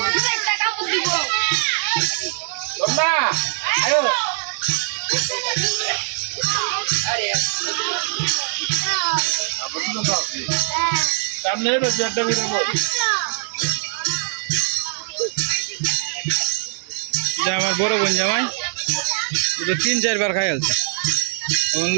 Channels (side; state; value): left; silent; 62 dB below the other